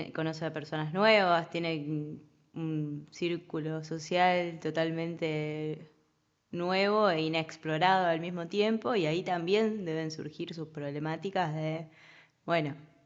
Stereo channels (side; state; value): both; identical; correlation 1.00